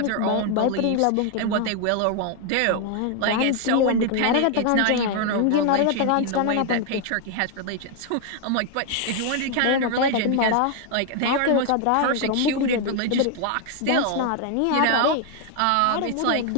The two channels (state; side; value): different; both; correlation 0.00